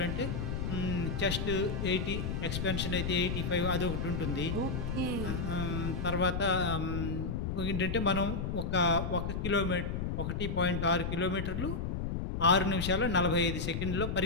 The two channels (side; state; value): left; noise; rumble, 2 dB below the sound